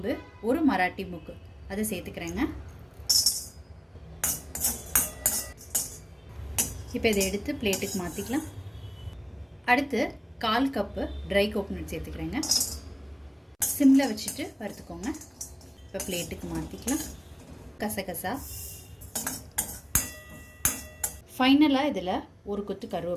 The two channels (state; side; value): identical; both; correlation 1.00